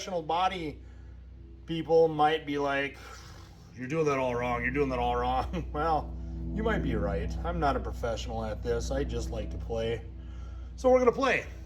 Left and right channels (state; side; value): identical; both; correlation 1.00